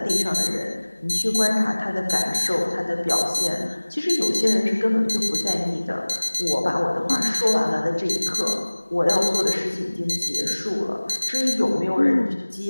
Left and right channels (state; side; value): inverted; both; correlation -1.00